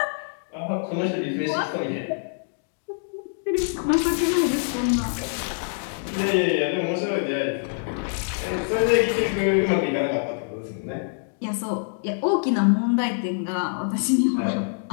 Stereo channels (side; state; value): right; silent; digital silence